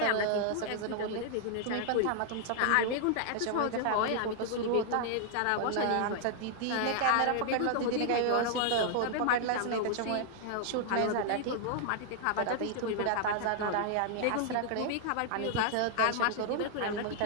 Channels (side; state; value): both; different; correlation 0.00